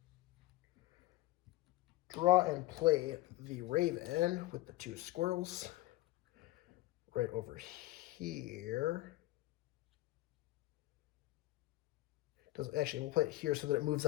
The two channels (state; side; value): quieter; right; 18.1 dB